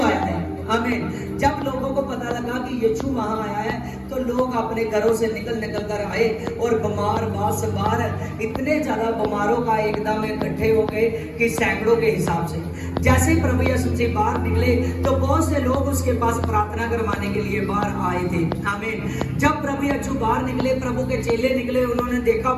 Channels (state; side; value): identical; both; correlation 1.00